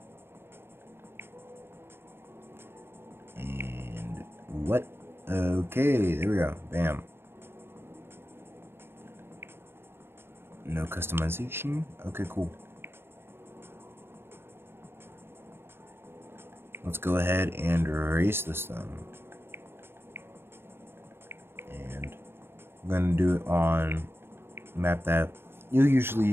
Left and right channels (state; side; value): late; left; 0.11 ms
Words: And what? Okay, there we go. Bam. No customization. Okay, cool. Let's go ahead and erase this then. And I'm gonna do it on map that you'll